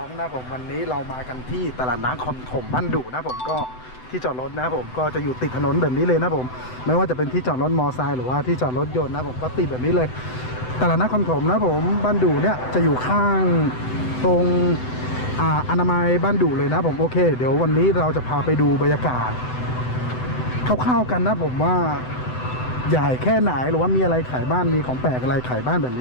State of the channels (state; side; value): late; right; 7.9 ms